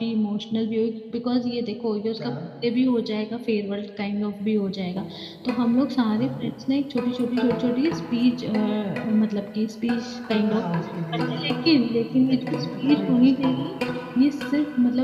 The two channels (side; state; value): both; identical; correlation 1.00